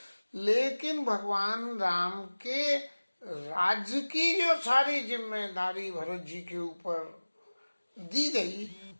लेकिन भगवान राम के राज्य की जो सारी जिम्मेदारी भरत जी के ऊपर दी गई,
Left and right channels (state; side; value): inverted; both; correlation -1.00